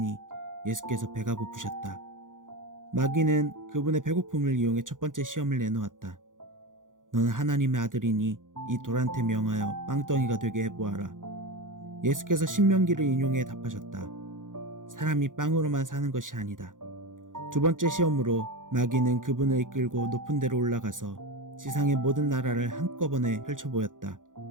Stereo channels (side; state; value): left; late; 0.88 ms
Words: 예수께서 배가 고프셨다. 마귀는 그분의 배고픔을 이용해 첫 번째 시험을 내놓았다. 너는 하나님의 아들이니 이 돌한테 명하여 빵덩이가 되게 해보아라. 예수께서 신명기를 인용해 답하셨다. 사람이 빵으로만 사는 것이 아니다. 두 번째 시험으로 마귀는 그분을 이끌고 높은 데로 올라가서 지상의 모든 나라를 한꺼번에 펼쳐보였다.